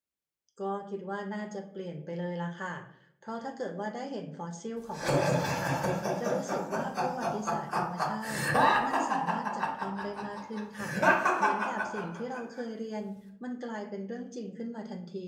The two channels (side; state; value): both; identical; correlation 1.00